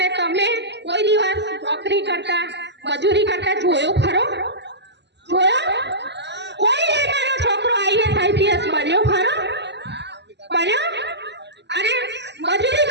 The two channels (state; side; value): late; left; 0.50 ms